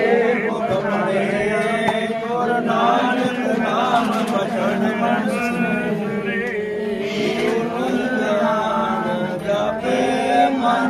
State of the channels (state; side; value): identical; both; correlation 1.00